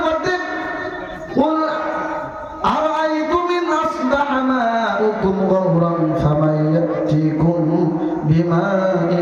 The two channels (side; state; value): both; identical; correlation 1.00